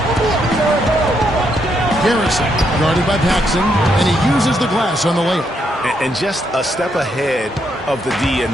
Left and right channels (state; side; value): normal; both; correlation 0.77